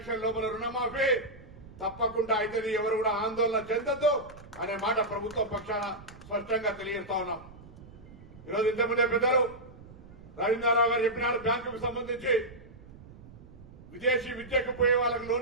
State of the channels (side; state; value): right; noise; rumble, 19 dB below the sound